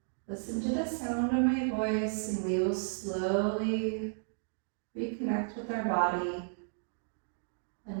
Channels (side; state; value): left; silent; digital silence